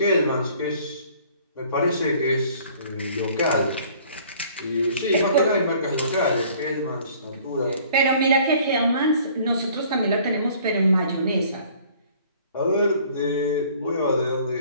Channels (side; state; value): both; inverted; correlation -0.55